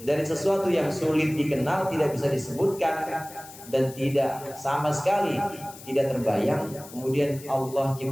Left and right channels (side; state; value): left; noise; hiss, 17 dB below the sound